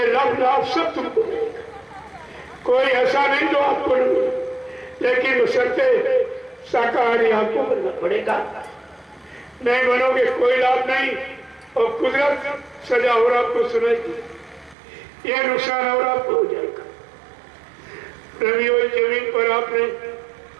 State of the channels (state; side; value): drops out; left; at 14.8 s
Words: लाभ सब तुमको मिलेगा। कोई ऐसा नहीं जो आपको नहीं मिले, लेकिन बशर्ते शाकाहारी आपको बनना पड़ेगा। नहीं बनोगे कोई लाभ नहीं, और कुदरत सजा और आपको सुनाएगी, ये नुकसान और आपको हो जाएगा। रवियों जमीन पर आपने